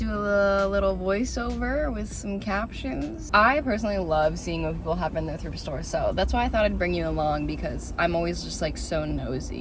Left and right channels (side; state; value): both; identical; correlation 1.00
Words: a little voiceover with some captions. I personally love seeing what people have in their thrift store, so that's why I thought I'd bring you along, because I'm always just like so